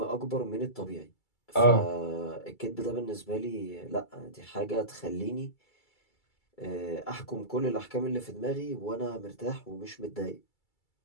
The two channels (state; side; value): late; right; 2.3 ms